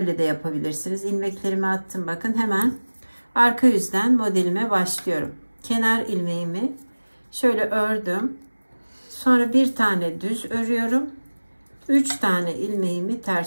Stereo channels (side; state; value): both; inverted; correlation -1.00